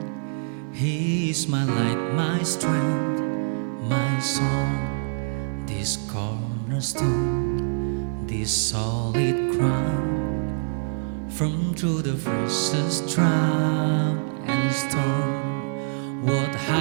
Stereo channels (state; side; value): silent; left; digital silence